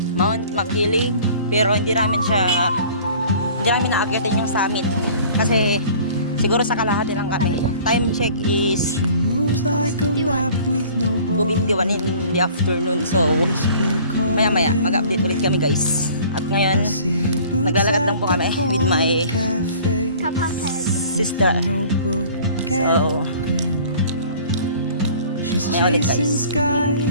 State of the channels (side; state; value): both; inverted; correlation -0.48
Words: Mount Makiling, pero hindi namin naakyatin yung summit kasi siguro sa kalahati lang kami. Time check is 2:51 in the afternoon. So maya maya mag-update ulit kami guys. At ngayon naglalakad lang po kami with my sister. So may ulit guys.